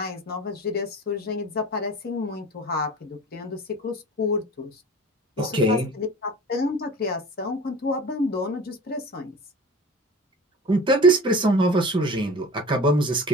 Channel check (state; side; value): normal; both; correlation 0.38